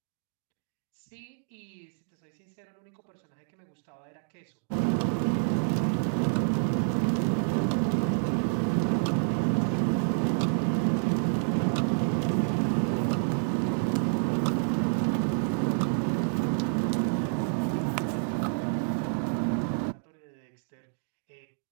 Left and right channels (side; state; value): left; silent; 59 dB below the other